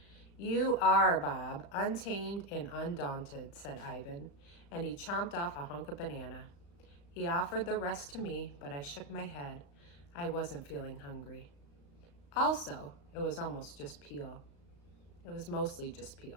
You are, Bob, untamed and undaunted, said Ivan, and he chomped off a hunk of banana. He offered the rest to me, but I shook my head. I wasn't feeling hungry. Also, it was almost just peel. It was mostly just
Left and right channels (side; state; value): right; late; 35 ms